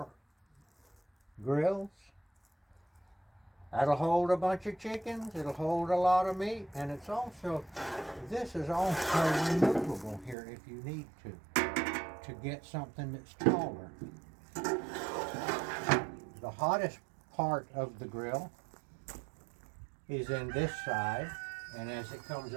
grills. That'll hold a bunch of chickens, it'll hold a lot of meat, and it's also, this is also removable here if you need to get something that's taller. The hottest part of the grill is in this side, and as it comes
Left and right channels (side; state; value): left; drops out; at 10.4 s